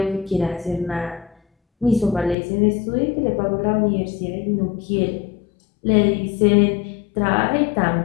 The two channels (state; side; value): drops out; right; at 2.4 s